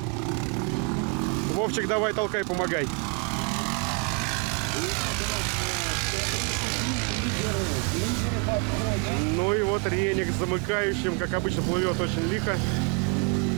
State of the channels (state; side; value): quieter; left; 32.5 dB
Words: Вовчик, давай, толкай, помогай. Ну и вот Реник с замыкающим, как обычно, плывет очень лихо.